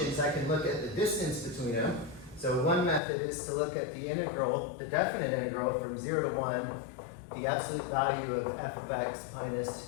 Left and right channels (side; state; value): right; drops out; at 3.0 s